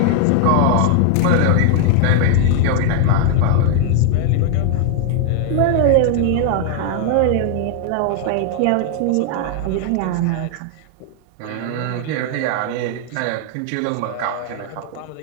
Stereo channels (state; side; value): different; both; correlation 0.00